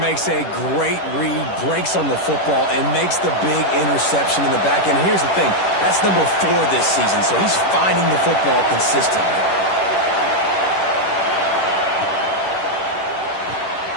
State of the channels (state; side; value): late; right; 10 ms